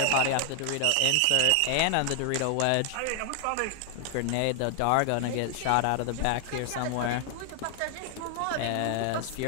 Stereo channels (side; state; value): both; different; correlation 0.00